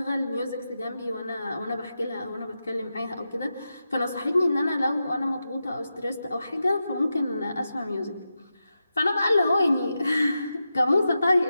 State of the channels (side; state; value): both; inverted; correlation -0.89